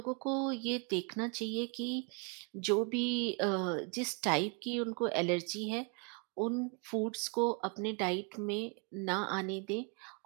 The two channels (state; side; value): quieter; left; 35.9 dB